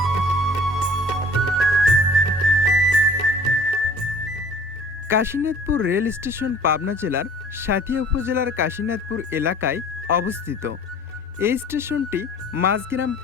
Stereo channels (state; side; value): normal; both; correlation 0.50